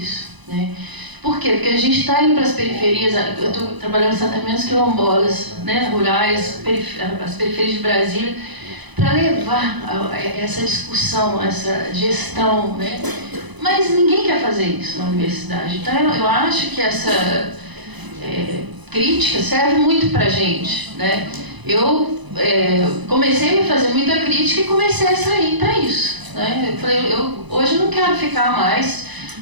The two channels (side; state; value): left; late; 1.0 ms